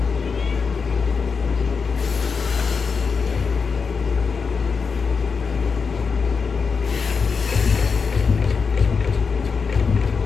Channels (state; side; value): quieter; right; 5.3 dB